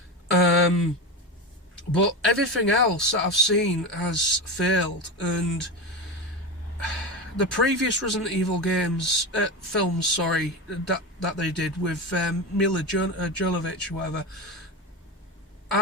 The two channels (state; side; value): normal; both; correlation 0.21